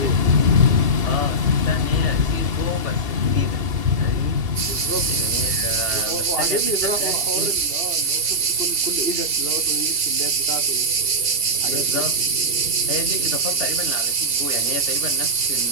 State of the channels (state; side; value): late; left; 2.7 ms